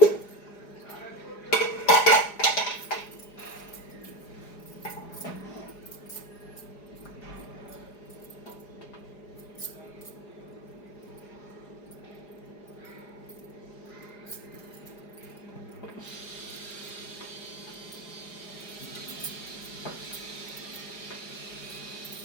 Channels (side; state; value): right; late; 4.9 ms